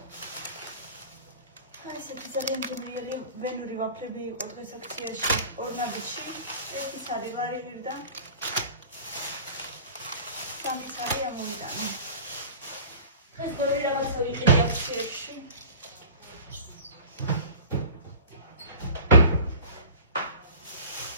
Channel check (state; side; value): inverted; both; correlation -0.40